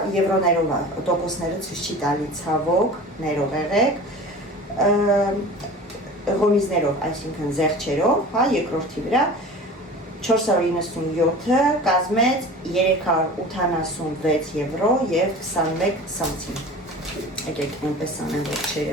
եվրոներով է, տոկոսները ցույց չի տալի ցավոք, ներող եղեք, ղոմիզներով, այսինքն զեղչերով, հա, երկրորդի վրա, 497-ը կազմեց 386 եվրո և 21 սանտիմ։ Եկեք այնպես անեմ, որ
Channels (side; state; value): both; normal; correlation 0.38